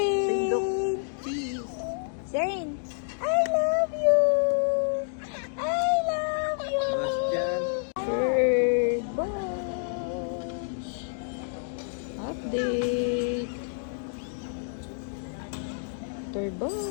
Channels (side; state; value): right; silent; digital silence